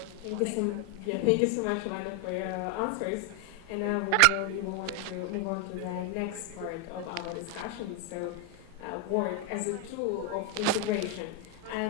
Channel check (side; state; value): both; different; correlation 0.01